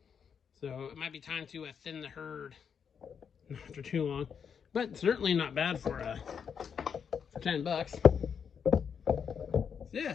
So it might be time to thin the herd after too long, but certainly not bad for $10. So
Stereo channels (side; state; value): right; quieter; 7.0 dB